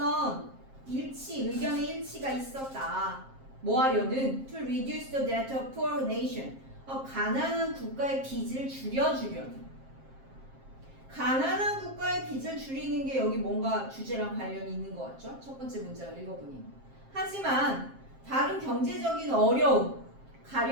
의견의 일치가 있었다. 뭐 하려는? To reduce the debt of poor nation. 가난한 국가의 빚을 줄여주려는. 가난한 국가의 빚을 줄이는 게 여기 뭔가 주제랑 관련이 있는 것 같죠? 첫 번째 문제를 읽어보니. 하지만 다른 경제적인 어려움,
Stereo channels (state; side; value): late; left; 7.5 ms